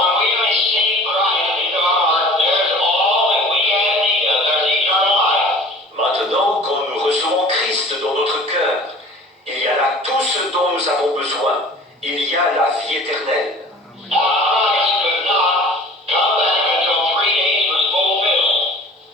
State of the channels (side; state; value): both; normal; correlation 0.45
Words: we receive Christ into our heart, there's all that we have need of. There's eternal life. Maintenant, quand nous recevons Christ dans notre cœur, il y a là tout ce dont nous avons besoin. Il y a la vie éternelle. Now, Christ could not come back until 3 days was fulfilled,